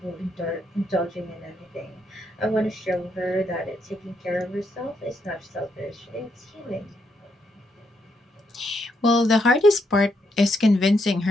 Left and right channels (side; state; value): both; normal; correlation 0.78